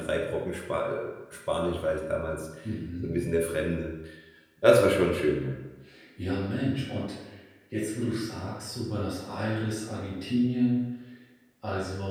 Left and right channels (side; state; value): both; identical; correlation 1.00